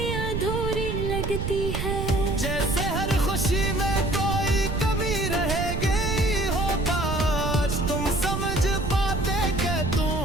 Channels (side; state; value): right; noise; rumble, 3 dB below the sound